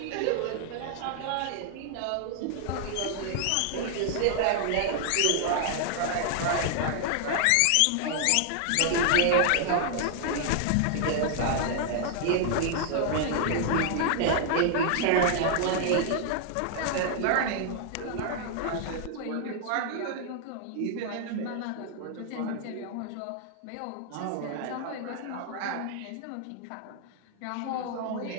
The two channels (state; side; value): different; both; correlation 0.00